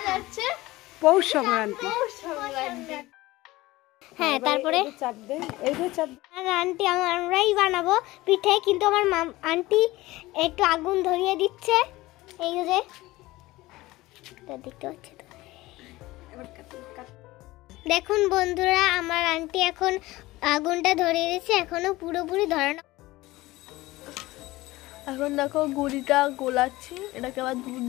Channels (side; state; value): right; quieter; 19.0 dB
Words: আছে পৌষ সংক্রান্তি। হ্যাঁ, তারপরে আন্টি আমরাই বানাবো পিঠে, কিন্তু আমার আন্টি একটু আগুন ধরিয়ে দিচ্ছে। এই যে দেখতে পাচ্ছি তো, দেখুন বন্ধুরা, আমার আন্টি এখন আগুনটা ধরিয়ে দিচ্ছে, এখনো পুরোপুরি ধরানো। এখন দেখো গুড়িটা গোলাচ্ছি, এটাকে আবার দুধ